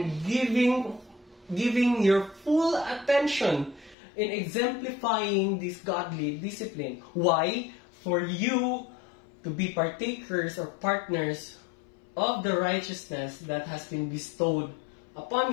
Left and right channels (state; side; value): drops out; right; at 4.0 s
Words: giving your full attention in exemplifying this godly discipline. Why? For you to be partakers or partners of the righteousness that has been bestowed upon